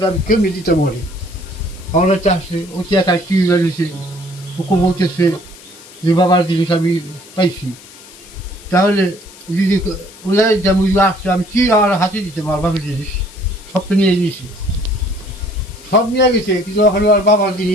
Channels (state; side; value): noise; left; hiss, 20 dB below the sound